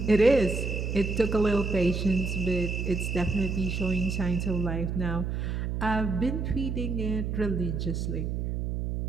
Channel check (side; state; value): right; noise; hum, 2 dB below the sound